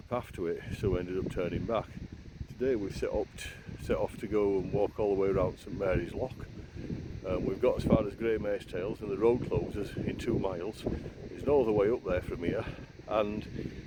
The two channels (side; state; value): both; identical; correlation 1.00